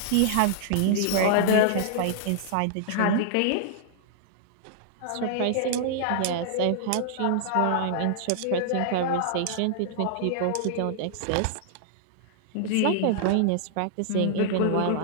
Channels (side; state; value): both; different; correlation -0.01